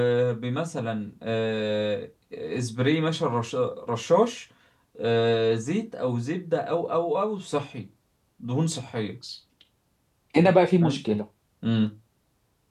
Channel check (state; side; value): identical; both; correlation 1.00